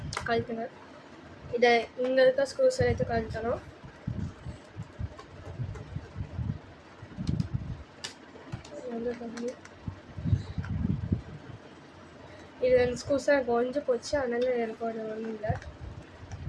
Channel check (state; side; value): identical; both; correlation 1.00